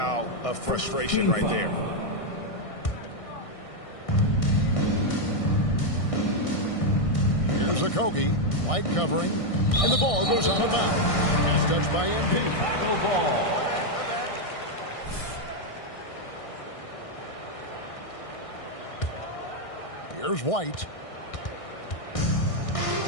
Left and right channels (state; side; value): late; right; 1.6 ms